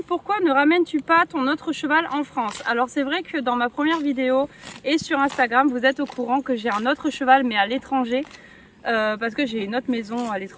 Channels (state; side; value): identical; both; correlation 1.00